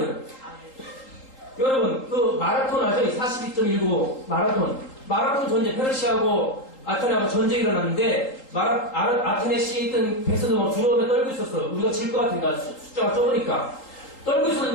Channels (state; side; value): late; right; 3.8 ms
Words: 여러분 그 마라톤 아죠? 42.19 마라톤 전쟁 페르시아하고 아테네하고 전쟁이 일어났는데 아테네 시에 있던 배선도 막 두려움에 떨고 있었어. 우리가 질 것 같으니까 숫자가 적으니까 떨고